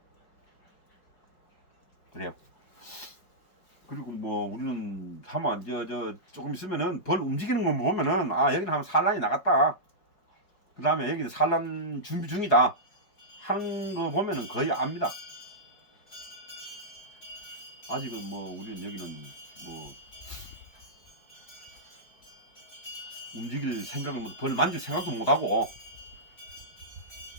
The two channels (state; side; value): late; right; 4.8 ms